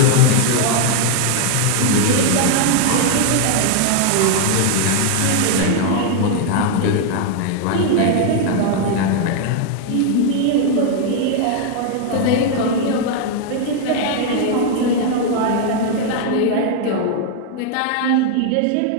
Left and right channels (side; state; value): both; different; correlation 0.00